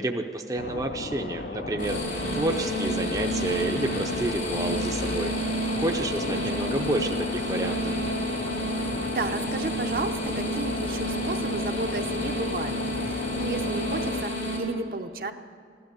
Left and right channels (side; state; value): both; normal; correlation 0.35